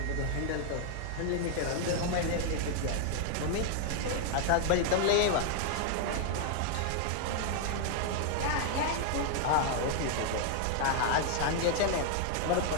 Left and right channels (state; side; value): different; both; correlation 0.00